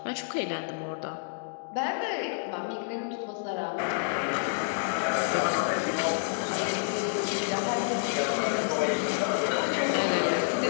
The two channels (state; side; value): silent; right; digital silence